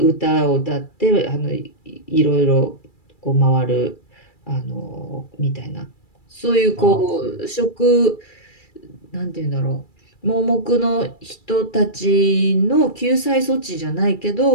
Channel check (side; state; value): right; late; 2.3 ms